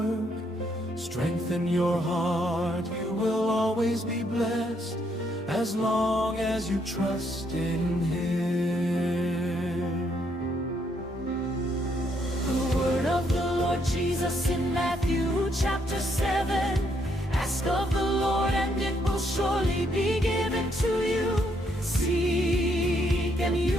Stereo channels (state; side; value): normal; both; correlation 0.73